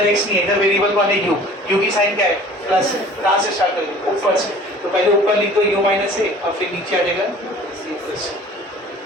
x नहीं है, इधर वेरिएबल कौन है u की साइन क्या है प्लस है. कहाँ से स्टार्ट करेंगे ऊपर से, तो पहले ऊपर लिख दो u माइनस a और फिर नीचे आ जाएगा c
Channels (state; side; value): normal; both; correlation 0.47